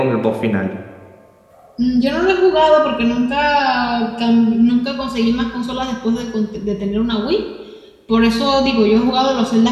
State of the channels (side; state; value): both; identical; correlation 1.00